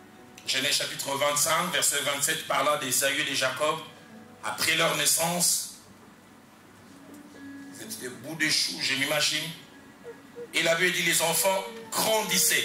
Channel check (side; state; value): both; identical; correlation 1.00